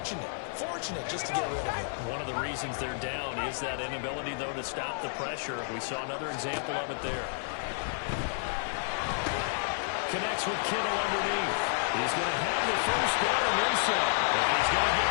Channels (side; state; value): right; silent; 57 dB below the other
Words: just to get rid of it. One of the reasons they're down is that inability, though, to stop the pressure. We saw another example of it there. Connects with Kittle underneath. He's going to have the first down and then some. And he's going to get